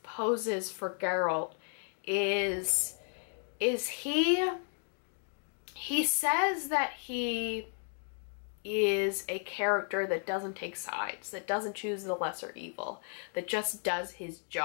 poses for Geralt is he says that he is a character that doesn't take sides, that doesn't choose the lesser evil, that just does his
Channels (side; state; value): right; silent; 55 dB below the other